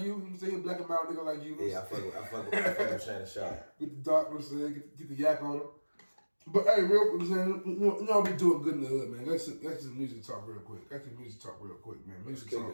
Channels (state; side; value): inverted; both; correlation -1.00